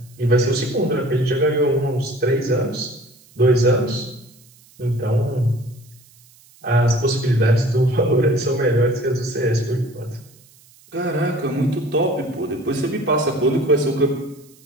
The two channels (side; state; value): right; noise; hiss, 28 dB below the sound